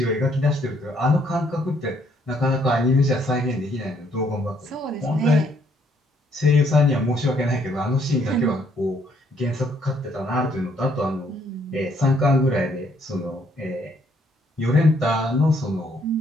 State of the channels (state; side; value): normal; both; correlation 0.68